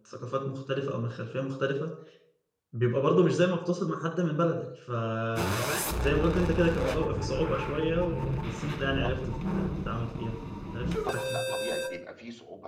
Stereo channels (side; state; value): both; identical; correlation 1.00